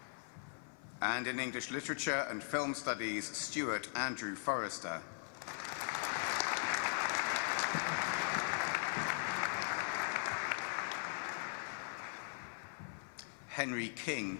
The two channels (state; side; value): silent; right; 51 dB below the other